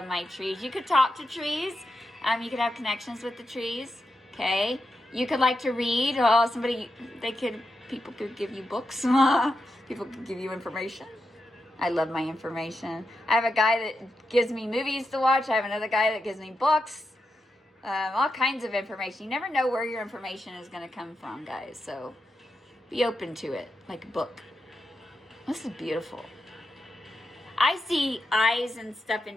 my trees. You could talk to trees. You could have connections with the trees. Okay. You could like to read. Oh, people could give you books. People could give you information. I love my information. I have a guy that gives me movies to watch. I have another guy that gives me books. All kinds of information. You never know where your information is going to come from, guys. So be open to it, like a book. This is beautiful. I see eyes and stuff in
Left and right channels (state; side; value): normal; both; correlation 0.87